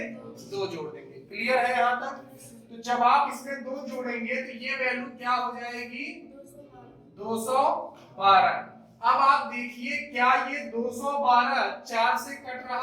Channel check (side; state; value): both; identical; correlation 1.00